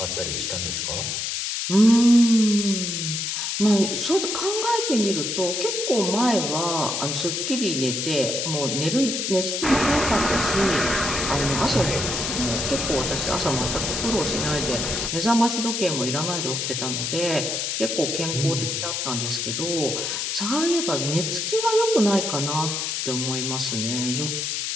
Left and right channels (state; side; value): noise; left; hiss, 2 dB below the sound